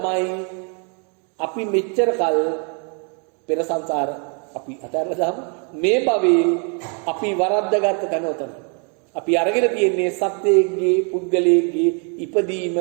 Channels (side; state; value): left; quieter; 38.3 dB